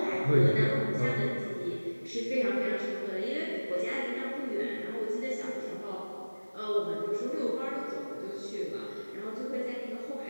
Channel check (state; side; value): inverted; both; correlation -1.00